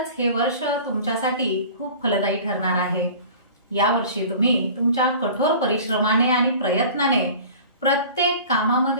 हे वर्ष तुमच्यासाठी खूप फलदायी ठरणार आहे। यावर्षी तुम्ही तुमच्या कठोर परिश्रमाने आणि प्रयत्नाने प्रत्येक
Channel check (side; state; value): both; inverted; correlation -0.42